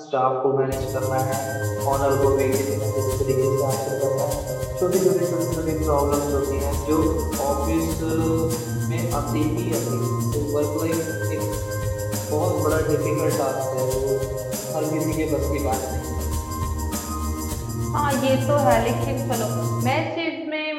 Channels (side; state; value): both; identical; correlation 1.00